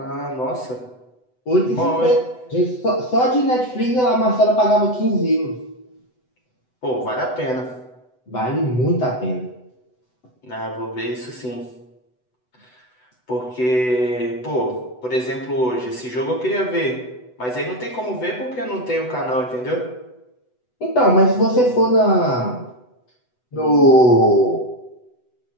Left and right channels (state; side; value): late; right; 8.0 ms